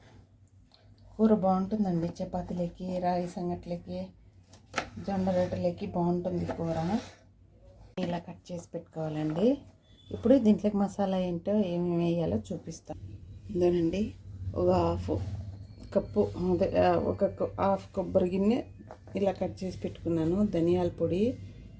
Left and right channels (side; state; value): both; identical; correlation 1.00